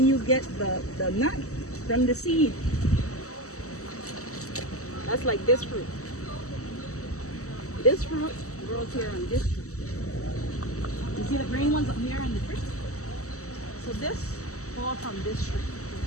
you get the nut from the seed. That's like this fruit. This fruit grows here on this tree. You see the green ones up here on the tree? So this falls from this tree.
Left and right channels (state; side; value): late; right; 0.65 ms